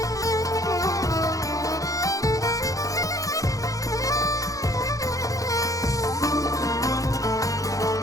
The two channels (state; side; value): late; right; 0.17 ms